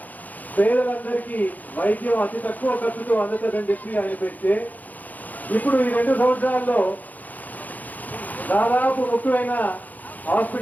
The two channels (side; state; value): right; late; 0.081 ms